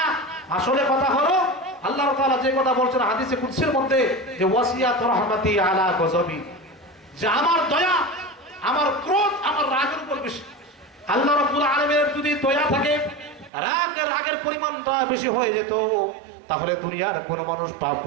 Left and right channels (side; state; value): left; drops out; at 13.5 s